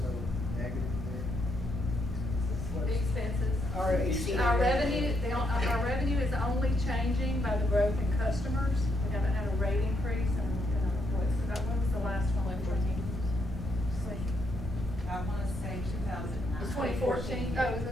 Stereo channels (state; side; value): normal; both; correlation 0.76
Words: negative there? The expenses. Our Our revenue is only changing by the growth in customers. We haven't had a rate increase in when was the last one? I wanna say 2009. It's 2014. Oh, is